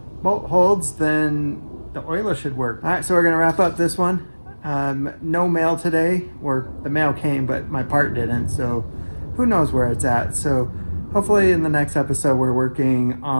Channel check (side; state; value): both; inverted; correlation -1.00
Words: bolt holds, then the oiler should work. All right, so we're gonna wrap up this one. No mail today, or the mail came, but my part didn't, so who knows where it's at. So hopefully in the next episode, we're working